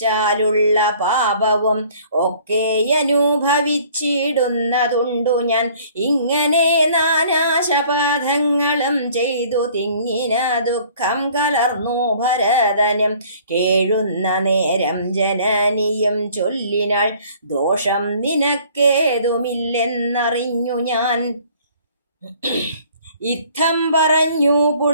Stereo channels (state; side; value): inverted; both; correlation -0.55